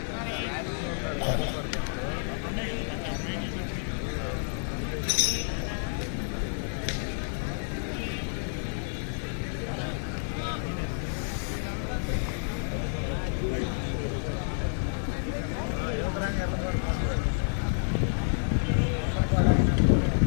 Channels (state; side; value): silent; right; digital silence